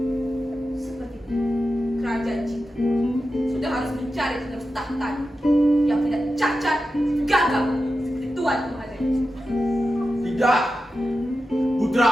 Seperti kerajaan cinta sudah harus mencari penerus tahta yang tidak cacat, gagal seperti Tuan Mahadewa. Tidak,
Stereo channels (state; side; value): normal; both; correlation 0.91